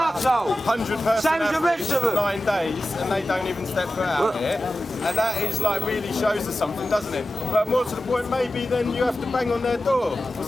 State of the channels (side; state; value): both; normal; correlation 0.95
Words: 100 person Same as the rest of them. 9 days and they don't even step foot out here, and that is like really shows us something, doesn't it? But more to the point, maybe then you have to bang on their door or